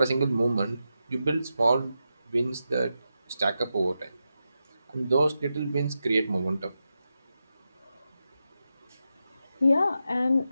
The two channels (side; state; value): both; inverted; correlation -0.88